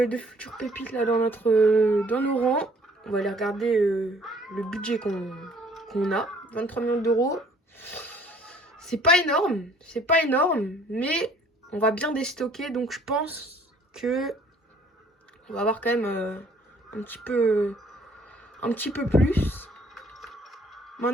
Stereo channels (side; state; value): both; normal; correlation 0.59